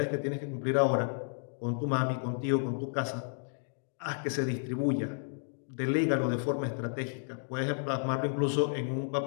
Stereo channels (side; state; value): right; silent; digital silence